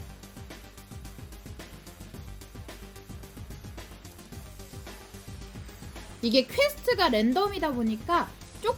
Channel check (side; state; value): both; identical; correlation 1.00